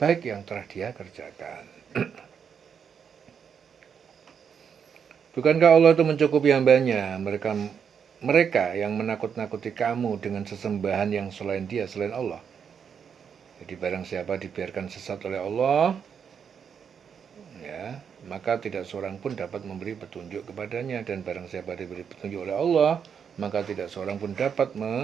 yang telah dia kerjakan. Bukankah Allah itu mencukupi hambanya? Mereka yang menakut-nakuti kamu dengan sesembahan yang selain Dia, selain Allah. Jadi barang siapa dibiarkan sesat oleh Allah, ya, maka tidak seorang pun dapat memberi petunjuk kepadanya, dan barang siapa diberi petunjuk oleh Allah, maka tidak seorang pun dapat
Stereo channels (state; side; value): quieter; left; 7.2 dB